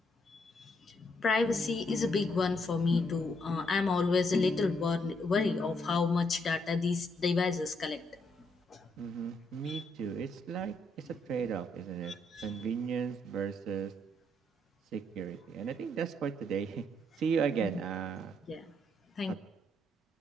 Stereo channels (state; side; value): normal; both; correlation 0.74